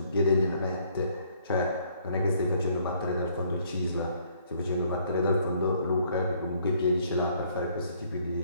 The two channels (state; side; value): inverted; both; correlation -0.64